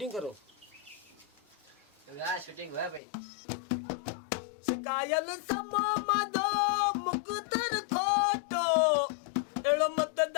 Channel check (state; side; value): drops out; right; at 3.0 s